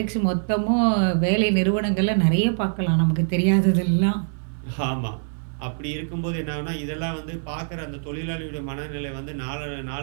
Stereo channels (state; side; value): silent; left; 63 dB below the other